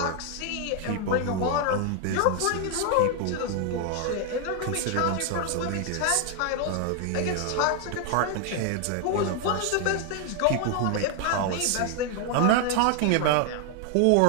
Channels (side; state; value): both; different; correlation 0.00